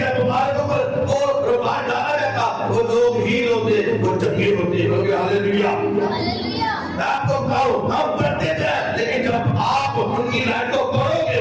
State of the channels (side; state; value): both; identical; correlation 1.00